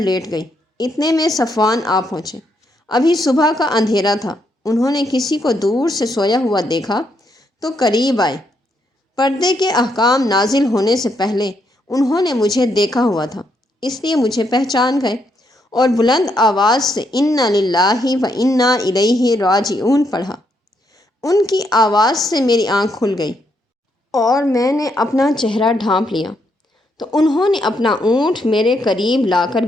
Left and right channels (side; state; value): both; normal; correlation 0.77